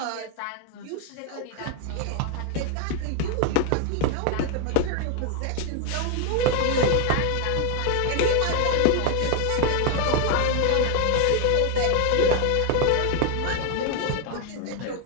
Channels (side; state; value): both; different; correlation 0.01